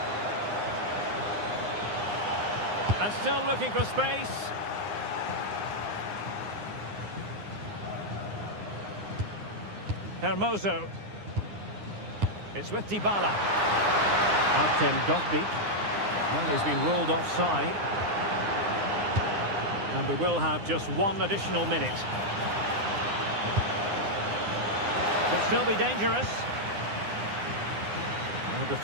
And still looking for space. Hermoso. It's with Dybala. Artem Dovbyk. Well, he's been ruled offside. And we will have just 1 additional minute. Could still be dangerous. No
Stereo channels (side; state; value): left; late; 9.8 ms